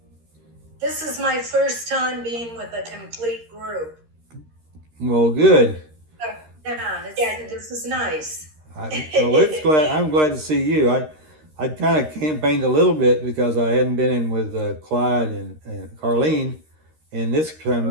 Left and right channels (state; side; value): late; left; 13 ms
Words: This is my first time being with a complete group. Well, good. This is nice. I'm glad to see you. I kind of campaigned a little bit because I hadn't been in with Clyde and Carlene, and this